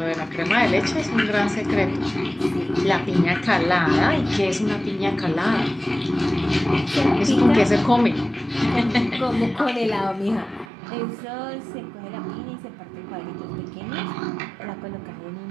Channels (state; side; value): drops out; left; at 10.7 s